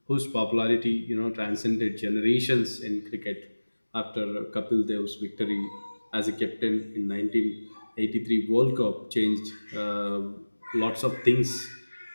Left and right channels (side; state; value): both; inverted; correlation -1.00